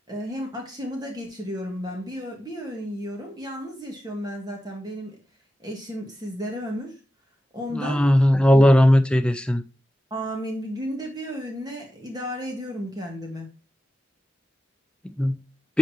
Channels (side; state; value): both; normal; correlation 0.92